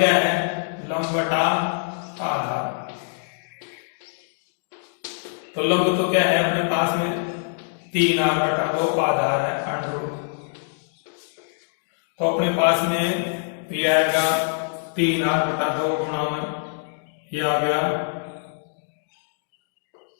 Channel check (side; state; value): right; silent; digital silence